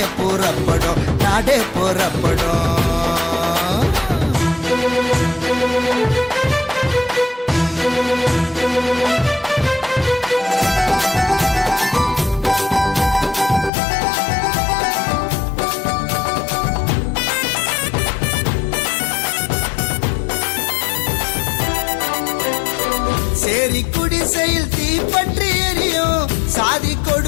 புறப்படும், நாடே புறப்படும். சேரி குடிசையில் தீப்பற்றி எரியும், சாதி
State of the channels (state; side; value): drops out; right; at 13.7 s